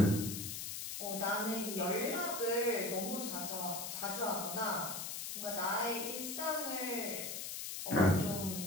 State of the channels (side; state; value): left; noise; hiss, 5 dB below the sound